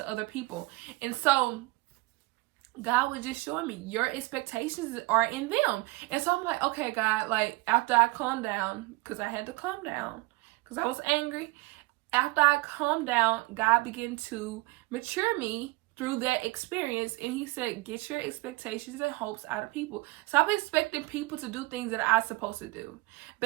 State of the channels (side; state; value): left; quieter; 22.8 dB